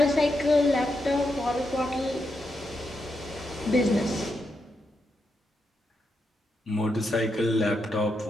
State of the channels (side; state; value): both; normal; correlation 0.83